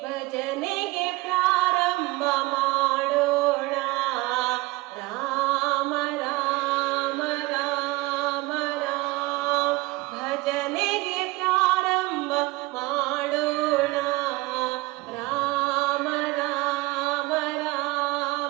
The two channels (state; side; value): quieter; left; 21.8 dB